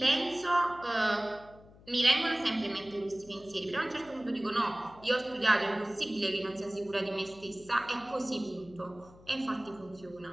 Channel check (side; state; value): left; noise; hum, 23 dB below the sound